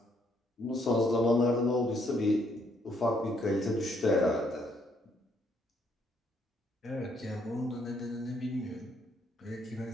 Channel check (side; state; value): both; normal; correlation 0.70